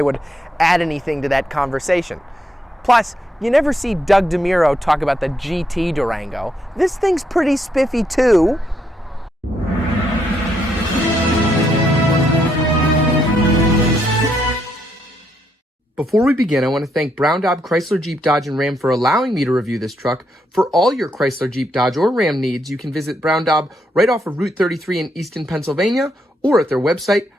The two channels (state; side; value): normal; both; correlation 0.76